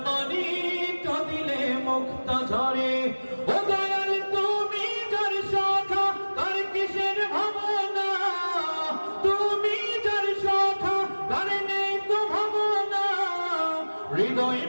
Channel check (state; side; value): inverted; both; correlation -1.00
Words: মানি কাঁদিলে মুক্তা ঝরে। ও দয়াল তুমি যার শাখা তার কিসের ভাবনা, তুমি যার শাখা তার নেই তো ভাবনা। হৃদয়